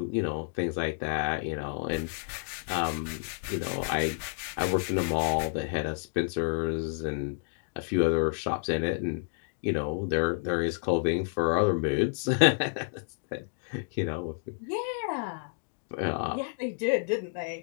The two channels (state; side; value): silent; right; digital silence